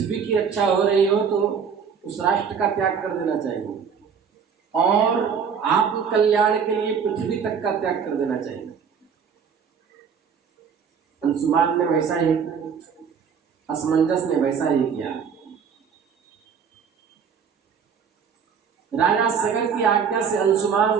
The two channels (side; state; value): left; quieter; 6.7 dB